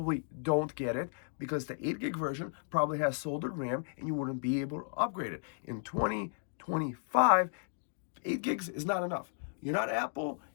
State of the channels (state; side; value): silent; right; digital silence